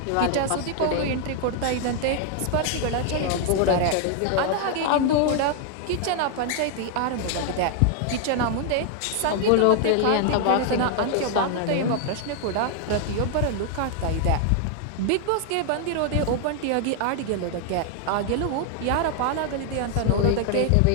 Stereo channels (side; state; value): both; different; correlation 0.00